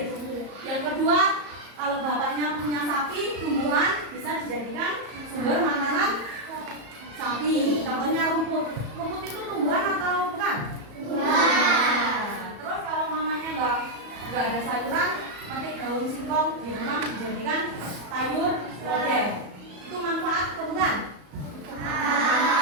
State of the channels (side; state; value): left; late; 34 ms